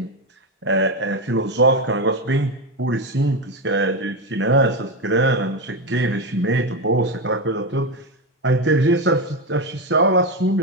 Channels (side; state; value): both; normal; correlation 0.12